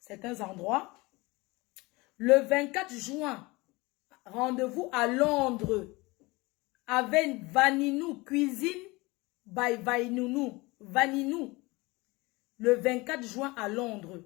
endroits. Le 24 juin, rendez-vous à Londres avec Vaninou Cuisine by Vaninou. Le 24 juin à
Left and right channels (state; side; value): quieter; right; 23.4 dB